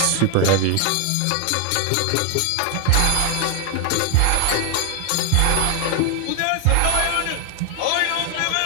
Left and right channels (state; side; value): different; both; correlation 0.00